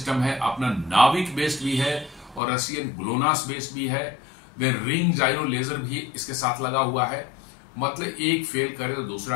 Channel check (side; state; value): right; drops out; at 2.4 s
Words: है, अपना नाविक बेस्ड भी है और रशियन ग्लोनास बेस्ड भी है। देन रिंग जाइरो लेजर भी इसके साथ लगा हुआ है। मतलब एक फेल करे तो